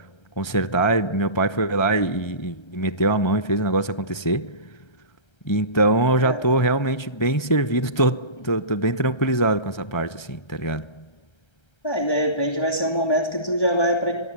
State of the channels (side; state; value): right; late; 1.3 ms